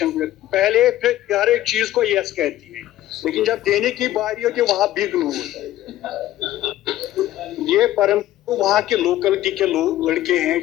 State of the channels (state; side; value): quieter; right; 14.0 dB